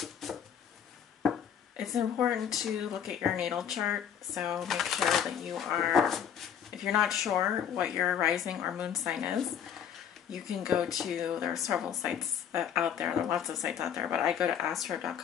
It's important to look at your natal chart, so make sure that you are, if you're not sure what your rising or moon sign is, you can go to, there are several sites out there, are lots of sites out there, but I go to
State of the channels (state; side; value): quieter; right; 8.6 dB